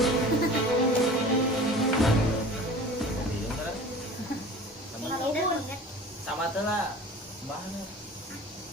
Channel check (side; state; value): both; normal; correlation 0.41